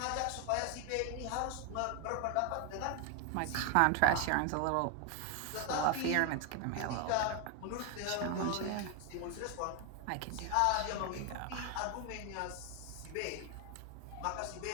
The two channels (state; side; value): different; both; correlation 0.00